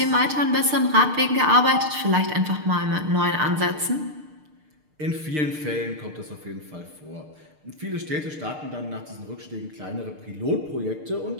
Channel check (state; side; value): late; left; 6.6 ms